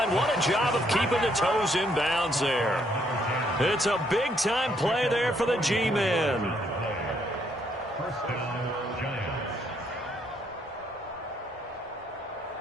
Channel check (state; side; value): normal; both; correlation 0.71